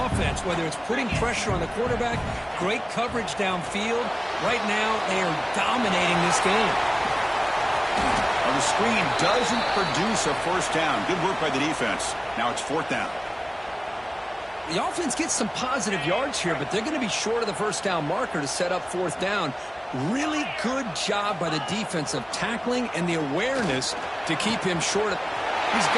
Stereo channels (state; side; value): identical; both; correlation 1.00